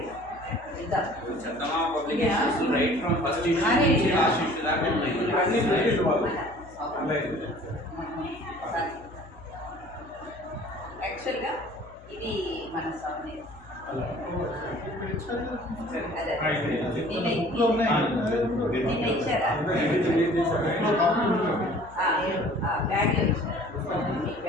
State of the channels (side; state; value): left; noise; hum, 21 dB below the sound